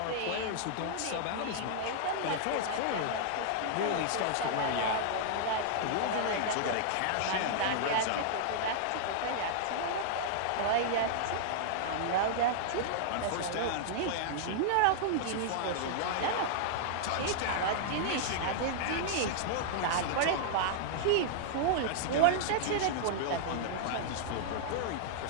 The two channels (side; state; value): both; different; correlation -0.01